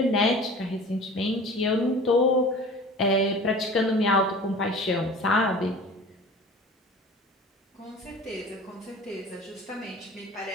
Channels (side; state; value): both; normal; correlation 0.41